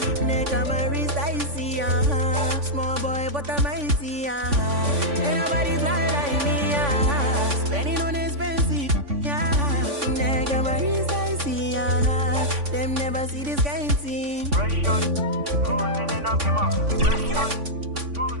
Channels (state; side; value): late; left; 3.5 ms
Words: neck on my wrist icy, small boy but I'm mighty, ain't nobody fly like me, spending on expensive, neck on my wrist icy, them never see this kind of thing. Cruising in a bima,